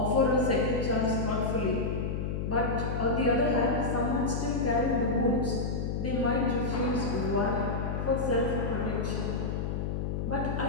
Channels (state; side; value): noise; left; hum, 2 dB below the sound